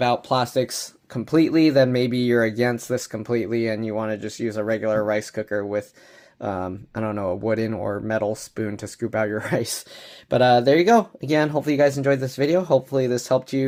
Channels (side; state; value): both; identical; correlation 1.00